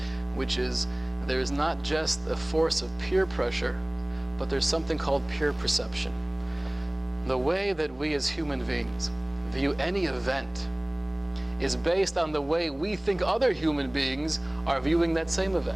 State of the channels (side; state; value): left; noise; rumble, 30 dB below the sound